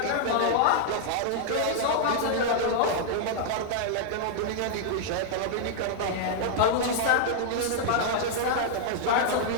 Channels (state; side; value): different; both; correlation -0.01